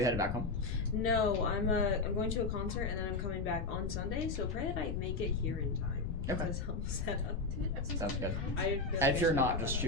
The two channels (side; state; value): left; noise; rumble, 3 dB below the sound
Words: headed back home? No, I'm going to a concert and then I'm coming back on Sunday. So pray that I make it here in time. Okay. To help set up. Sounds good. I feel like If I you're should not, look just that